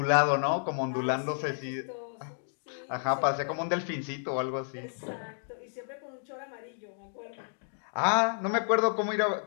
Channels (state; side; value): silent; right; digital silence